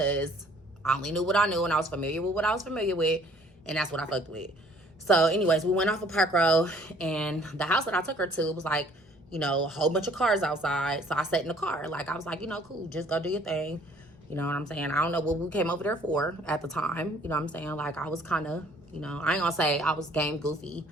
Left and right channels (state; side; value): normal; both; correlation 0.58